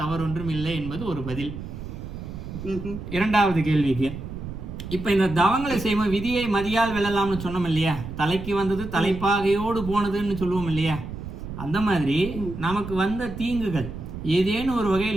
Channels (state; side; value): noise; right; rumble, 9 dB below the sound